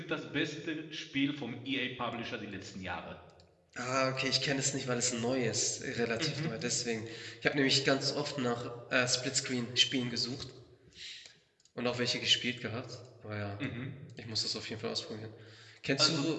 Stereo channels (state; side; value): identical; both; correlation 1.00